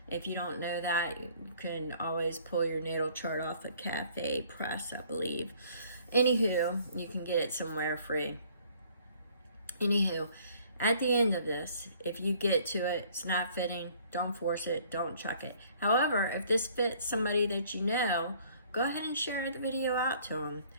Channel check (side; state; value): both; inverted; correlation -0.58